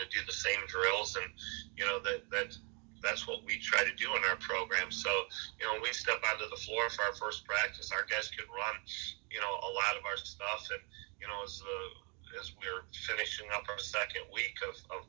to do the same drills, and that's what we try to do in our program. So when we step onto the floor for our first practice, our guys can run a lot of our stuff, and as we're finishing up our second week of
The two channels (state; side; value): quieter; left; 34.0 dB